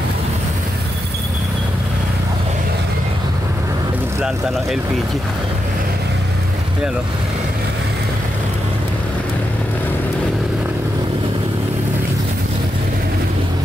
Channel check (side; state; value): both; normal; correlation 0.85